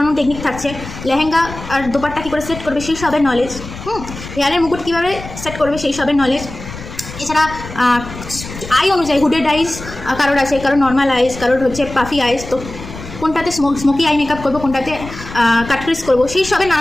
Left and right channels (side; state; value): left; noise; rumble, 12 dB below the sound